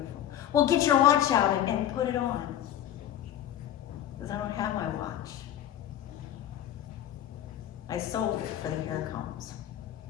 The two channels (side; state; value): right; quieter; 11.4 dB